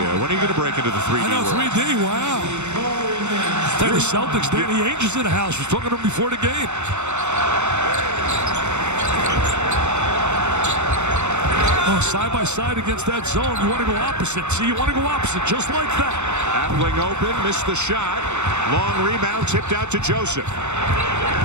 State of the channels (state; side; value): late; left; 0.83 ms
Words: When are you going to break into the 3D I know, world? 3D, wow. Tell you, the Celtics, Danny Ainge's in the house. Was talking to him before the game. Oh, side by side against that zone. You want to go opposite. See, you want to go opposite, just like that. Appling open, missed the shot. Long rebound, tipped out to Joseph.